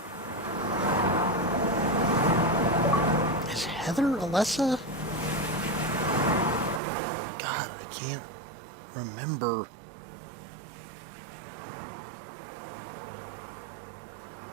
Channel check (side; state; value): left; drops out; at 6.8 s